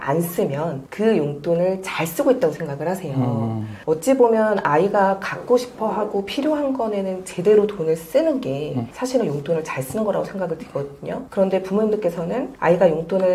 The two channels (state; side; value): identical; both; correlation 1.00